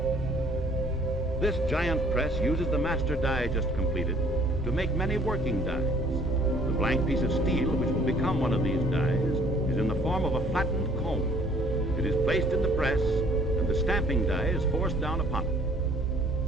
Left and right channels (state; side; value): normal; both; correlation 0.57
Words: This giant press uses the master die just completed to make many working dies. The blank piece of steel, which will become one of these dies, is in the form of a flattened cone. It is placed in the press, and the stamping die is forced down upon it.